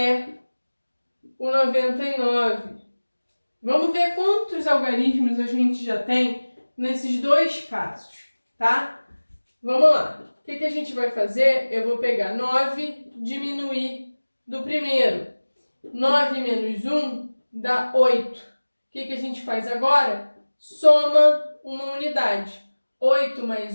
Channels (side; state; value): both; inverted; correlation -1.00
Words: o 99. Vamos ver quantos algarismos a gente já tem nesses dois casos, tá? Vamos lá. O que a gente vai fazer? Eu vou pegar 9, diminuir do primeiro. 9 menos 1 dá 8. O que a gente faz agora? Soma uma unidade. 8